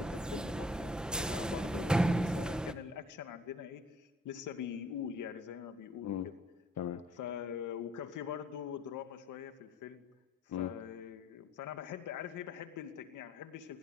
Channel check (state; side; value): normal; both; correlation 0.60